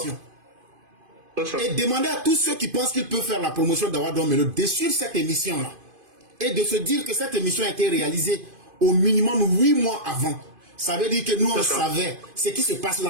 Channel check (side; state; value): left; late; 2.5 ms